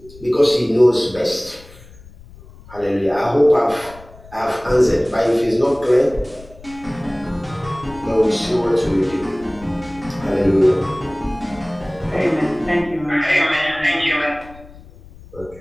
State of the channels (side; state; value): left; noise; rumble, 21 dB below the sound